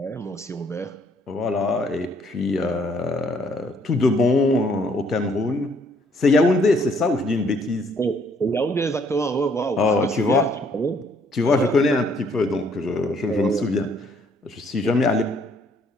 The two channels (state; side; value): normal; both; correlation 0.65